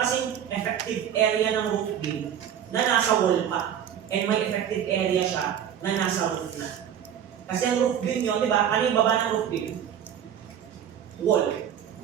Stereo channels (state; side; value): quieter; left; 9.4 dB